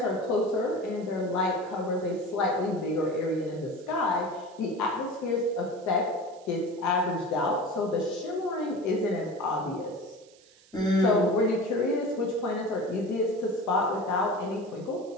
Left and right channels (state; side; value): noise; right; hiss, 27 dB below the sound